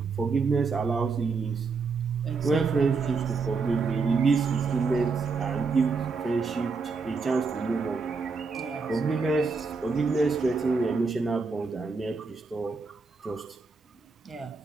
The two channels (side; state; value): left; quieter; 4.6 dB